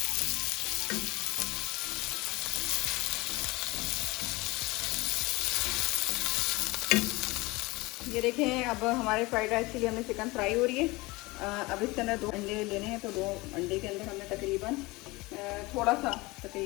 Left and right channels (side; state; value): right; quieter; 22.6 dB